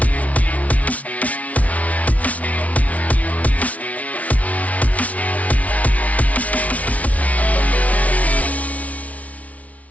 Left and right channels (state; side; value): late; right; 0.068 ms